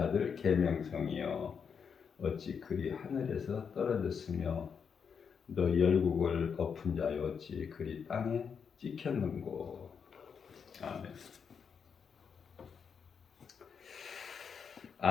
계명성이여 어찌 그리 하늘에서 떨어졌으며 너 열국을 엎은 자여 어찌 그리 땅에 찍혔는고. 아멘.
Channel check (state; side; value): quieter; right; 6.6 dB